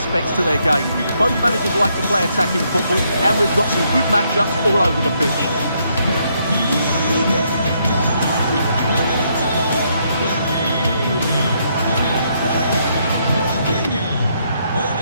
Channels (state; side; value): inverted; both; correlation -0.74